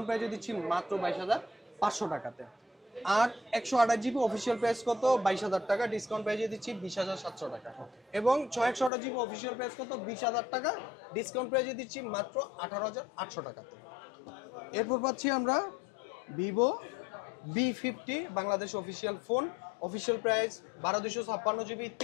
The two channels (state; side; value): drops out; right; at 8.9 s